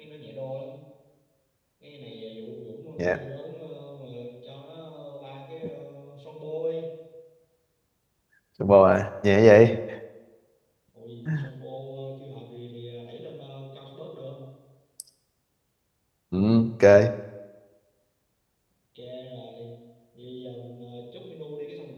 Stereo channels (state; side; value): identical; both; correlation 1.00